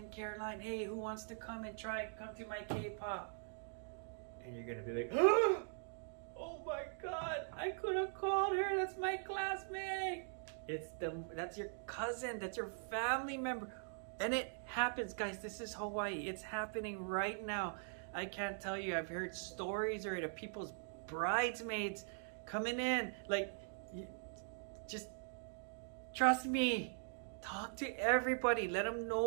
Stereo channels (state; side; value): silent; left; digital silence